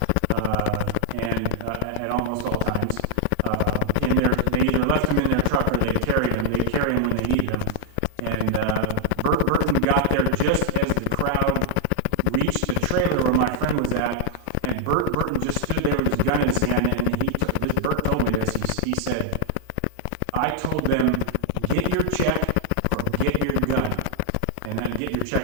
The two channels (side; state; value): both; different; correlation 0.00